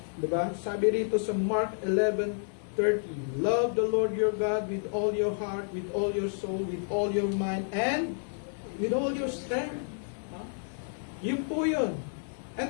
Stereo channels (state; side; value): silent; right; digital silence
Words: Diba? Sabi rito sa Mark 11:30, love the Lord your God with all your heart, with all your soul, with all your mind, and with all your strength. Yun po yun.